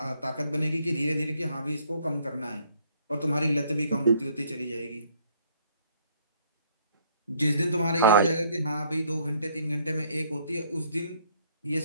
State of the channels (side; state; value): both; inverted; correlation -0.64